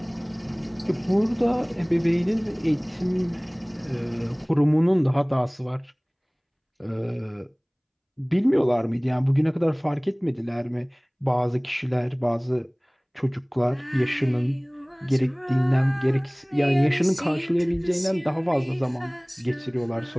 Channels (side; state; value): both; identical; correlation 1.00